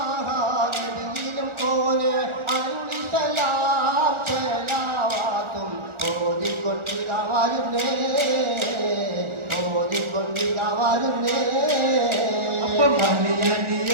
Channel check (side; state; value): left; late; 1.4 ms